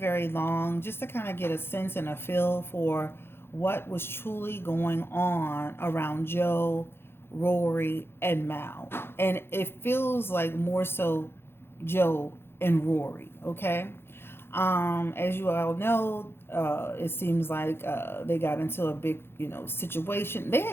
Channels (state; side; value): late; right; 0.11 ms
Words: long, just to kind of get a sense and a feel for what was truly going on around Joe, Rory, and Mal. And it feels like more so Joe and Rory, okay? As you all know, it seems like they got into a big, situation. They